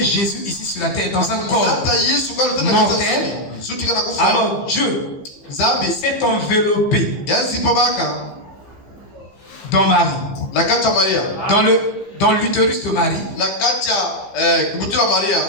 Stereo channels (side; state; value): right; late; 15 ms